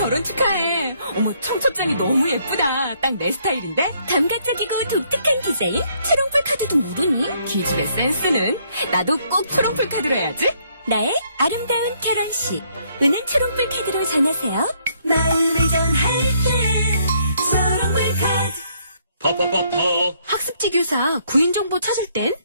축하해. 어머 청첩장이 너무 예쁘다. 딱 내 스타일인데? 감각적이고 독특한 디자인 초롱풀 카드도 모르니? 기집애 센스는? 나도 꼭 초롱풀 카드로 해야지. 나의 아름다운 결혼식 은은 초롱풀 카드로 전하세요. 마음을 전할 때 초롱풀 카드. 퍼퍼퍼퍼. 학습지 교사 구인 정보 찾을 땐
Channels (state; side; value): inverted; both; correlation -0.68